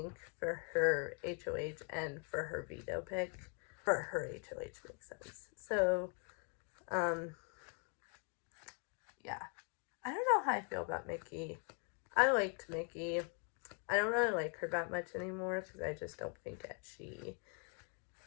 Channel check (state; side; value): quieter; right; 39.2 dB